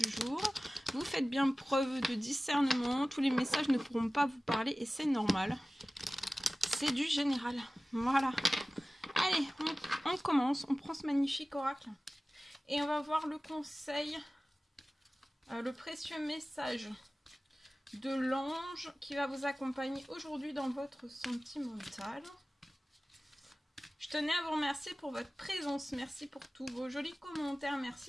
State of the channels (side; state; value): both; normal; correlation 0.97